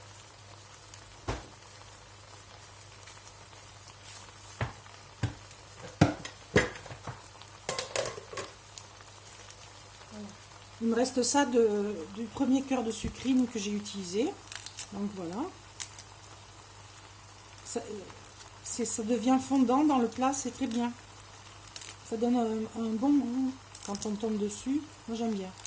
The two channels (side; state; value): both; identical; correlation 1.00